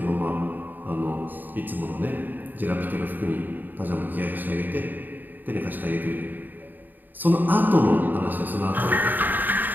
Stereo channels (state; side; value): late; left; 0.089 ms